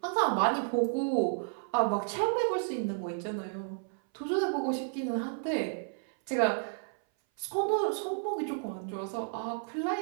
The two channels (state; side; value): silent; left; 56 dB below the other